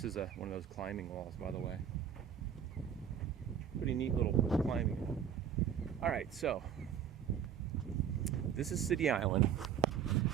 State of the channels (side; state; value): left; quieter; 8.6 dB